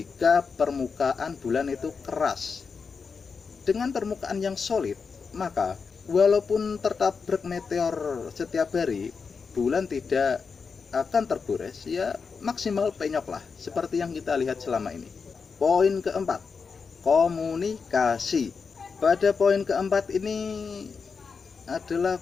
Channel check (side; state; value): right; quieter; 5.3 dB